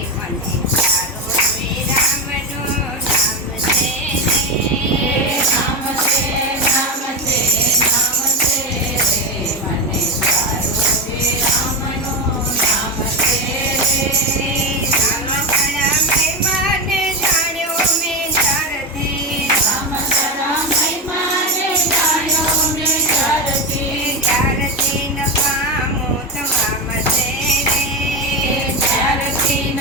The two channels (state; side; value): normal; both; correlation 0.14